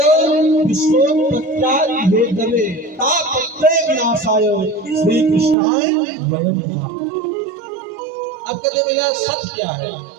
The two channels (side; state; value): left; drops out; at 5.6 s